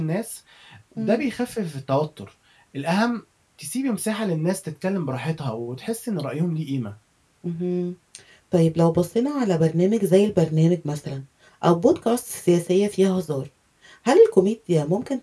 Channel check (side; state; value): both; identical; correlation 1.00